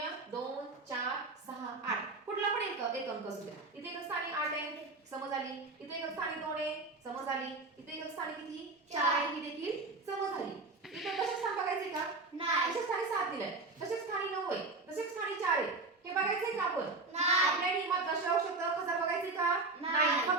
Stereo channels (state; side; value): quieter; left; 3.5 dB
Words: 2 4 6 8 कुठला पण एक अंक असू द्या. इथे एकच स्थानी 8 आहे, समज आली. इथे एकच स्थानी 2 आहे, समज आली. इथे एकच स्थानी किती? 4 आहे, ही देखील समज आली. इथे दशक स्थान बघायचे का? नाही. दशक स्थानी 7 दिलंय. दशक स्थानी 9 आहे, दशक स्थानी 4 आहे. हे बघायचंय का आपण? नाही. आपल्या नियमात दशांश शब्द हजार बघायचे का? नाही.